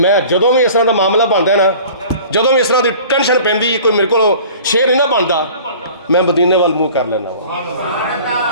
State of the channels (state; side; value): inverted; both; correlation -0.45